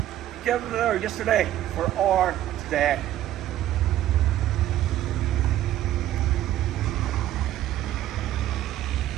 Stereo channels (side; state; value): left; quieter; 13.0 dB